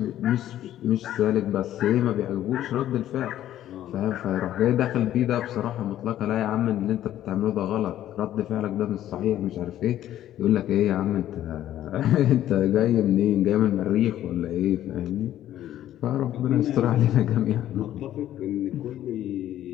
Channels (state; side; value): quieter; right; 12.4 dB